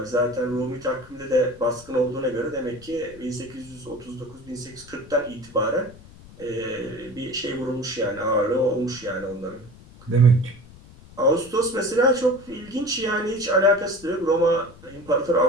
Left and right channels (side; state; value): left; noise; rumble, 21 dB below the sound